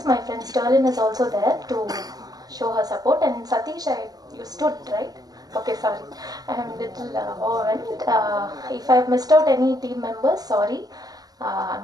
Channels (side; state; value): left; late; 0.19 ms